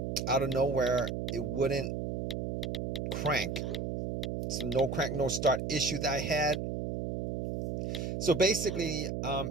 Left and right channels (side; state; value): right; noise; hum, 2 dB below the sound